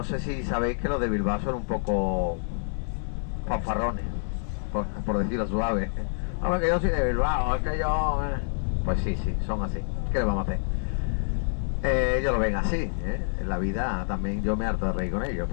sé si sabéis que los de Bilbao son un poco fanfarrones, por decirlo suave. Hombre, que yo soy de Bilbao, es que yo... Pues sí, son así. ¿Qué le vamos a hacer? Ellos lo ven así, ¿eh? En la vida también yo me harto de reír con ellos,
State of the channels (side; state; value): right; silent; digital silence